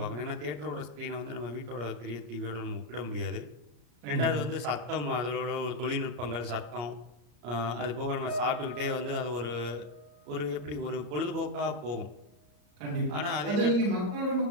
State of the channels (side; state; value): left; late; 34 ms